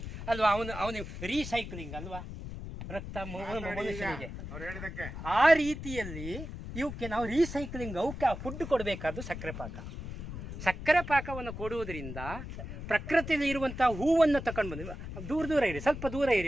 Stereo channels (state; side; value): noise; left; rumble, 9 dB below the sound